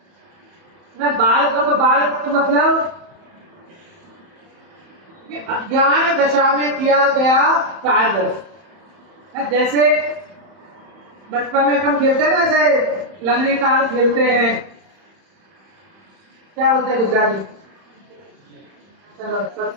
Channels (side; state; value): left; late; 31 ms